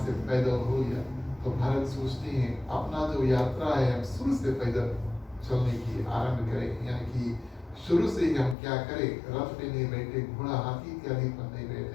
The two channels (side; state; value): right; drops out; at 8.6 s